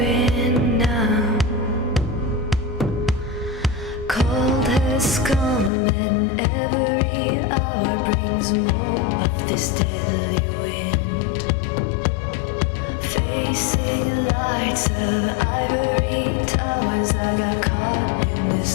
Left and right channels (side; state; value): right; drops out; at 5.7 s